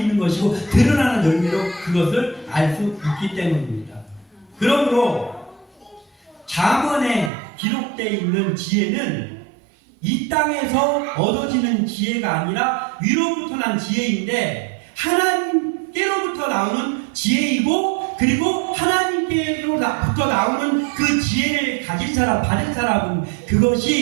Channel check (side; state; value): left; drops out; at 7.3 s